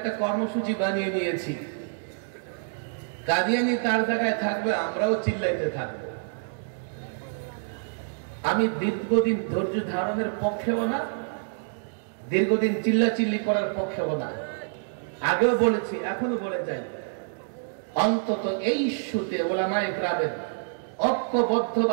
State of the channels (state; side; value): silent; left; digital silence